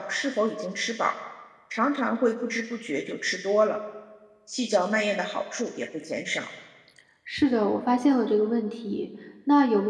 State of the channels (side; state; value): both; identical; correlation 1.00